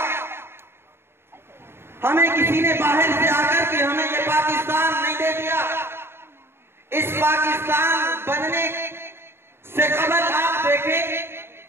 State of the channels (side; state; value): left; late; 0.11 ms